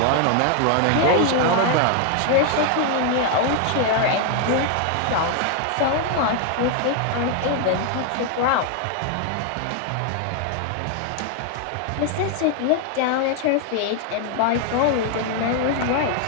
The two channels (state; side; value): different; both; correlation 0.00